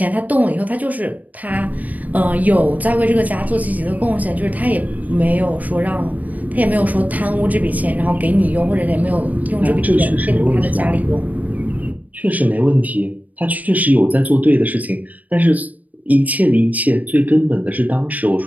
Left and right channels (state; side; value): late; left; 0.075 ms